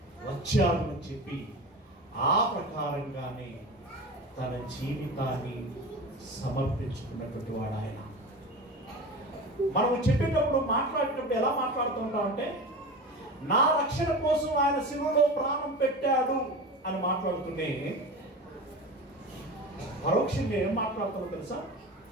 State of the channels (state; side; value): normal; both; correlation 0.30